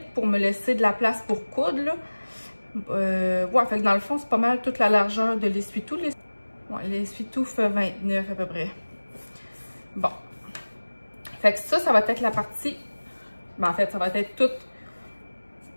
pour me laisser de la place pour coudre. Là. Ouais, fait que dans le fond, c'est pas mal toute la largeur de l'essuie-tout. Ouais, l'essuie-tout fait 29 à peu près. Bon. Fait que ça va être la partie... Ben, en fait, ça va être tout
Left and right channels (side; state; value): both; inverted; correlation -1.00